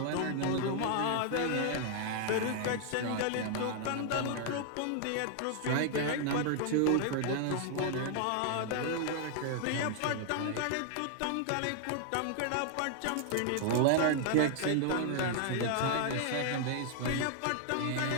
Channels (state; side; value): different; both; correlation 0.00